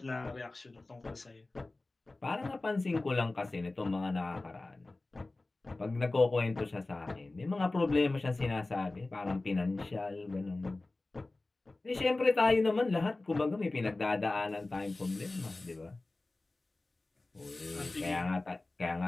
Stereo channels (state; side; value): quieter; right; 3.1 dB